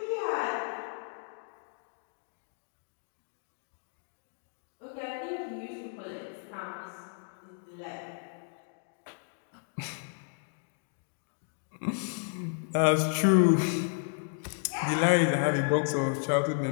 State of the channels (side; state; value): right; silent; digital silence